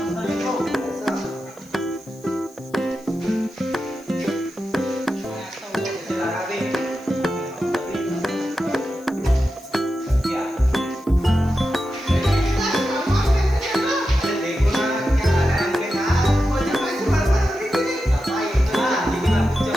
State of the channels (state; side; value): noise; left; hiss, 27 dB below the sound